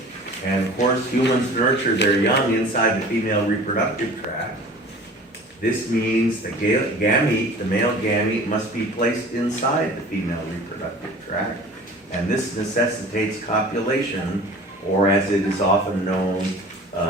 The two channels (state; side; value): normal; both; correlation 0.43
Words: and of course, humans nurture their young inside the female reproductive tract. This means the gamete, the male gamete, must be placed inside the female reproductive tract, and this necessitates copulation, or as it is often known,